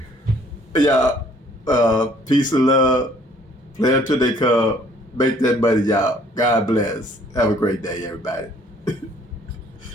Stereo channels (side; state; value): both; normal; correlation 0.59